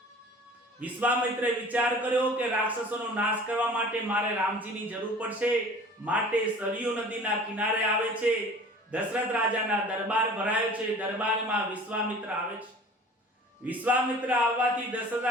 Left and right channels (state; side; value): normal; both; correlation 0.45